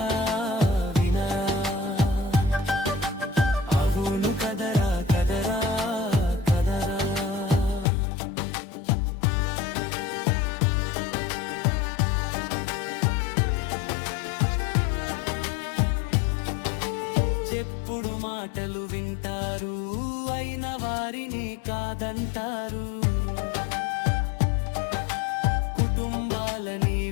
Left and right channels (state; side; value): drops out; right; at 7.9 s